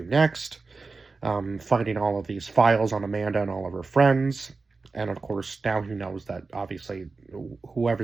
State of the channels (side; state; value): left; quieter; 4.0 dB